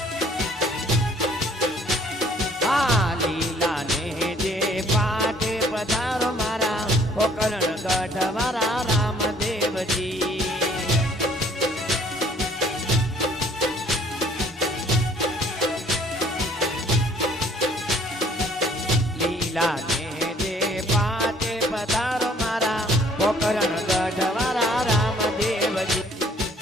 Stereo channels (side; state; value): both; normal; correlation 0.59